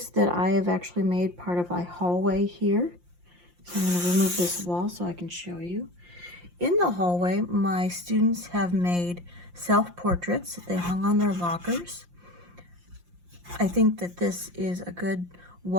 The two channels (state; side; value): late; left; 5.7 ms